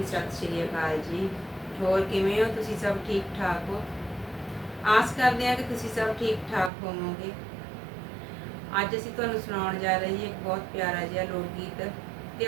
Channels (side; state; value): left; drops out; at 6.7 s